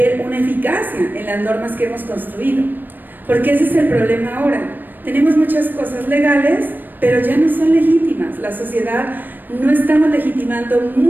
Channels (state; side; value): late; left; 0.091 ms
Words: una eficacia en las normas que hemos construido, porque ese es el problema ahora. Tenemos muchas cosas legales, pero ya no son legítimas. La sociedad no estamos legitimando